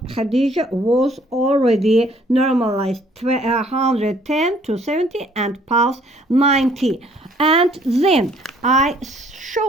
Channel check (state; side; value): normal; both; correlation 0.61